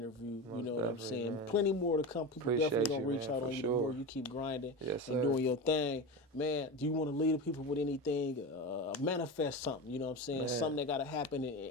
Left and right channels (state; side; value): normal; both; correlation 0.24